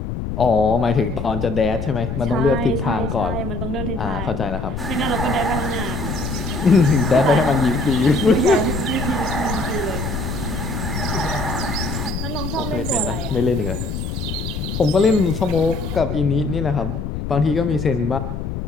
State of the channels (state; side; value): noise; left; rumble, 4 dB below the sound